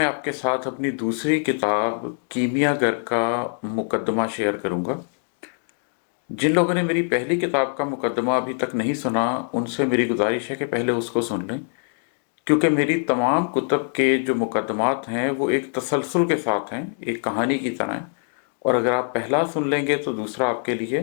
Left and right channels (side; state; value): right; silent; 63 dB below the other